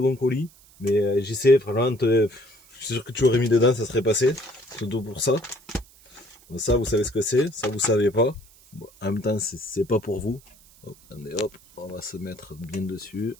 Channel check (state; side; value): noise; right; hiss, 26 dB below the sound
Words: colis. Mais j'y sais, vraiment, je suis sûr que tu aurais mis dedans, ça serait passé. Surtout pour ça. Ça, vous savez ce que c'est. Ça, vous savez pas. Bon, en même temps, c'est pas pour vous. Hop, attendez, hop, on va se mettre bien dessus.